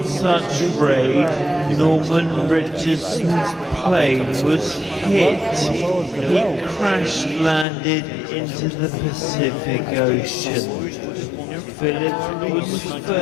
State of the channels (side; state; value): right; drops out; at 7.7 s